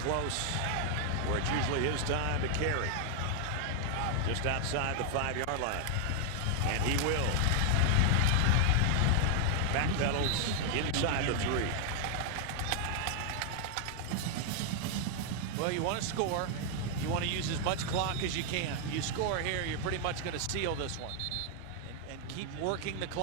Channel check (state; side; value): different; both; correlation 0.00